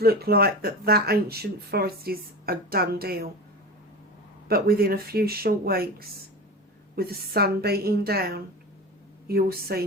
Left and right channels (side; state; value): both; normal; correlation 0.28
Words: like that ancient forest is a done deal. But within a few short weeks, with the sun beating down, you will see